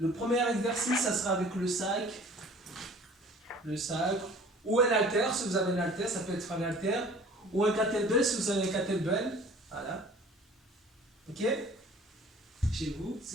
premier exercice, ça sera avec le sac, ou un haltère, si vous avez un haltère, ça peut être un haltère, ou un kettlebell, si vous avez un kettlebell. Voilà. Ok? Chez vous,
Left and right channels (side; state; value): both; normal; correlation 0.48